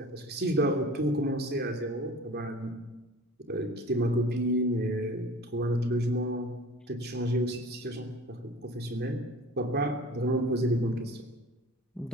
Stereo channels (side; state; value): both; normal; correlation 0.42